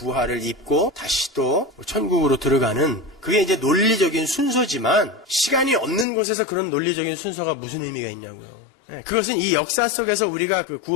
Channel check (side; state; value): right; drops out; at 6.1 s